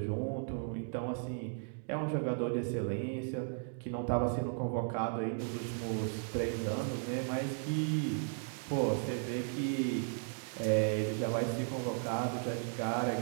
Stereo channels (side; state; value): left; silent; digital silence